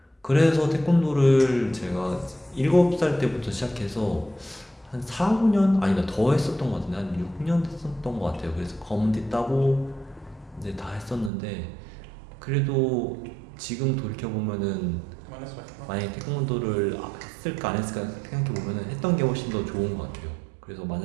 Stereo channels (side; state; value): left; drops out; at 11.3 s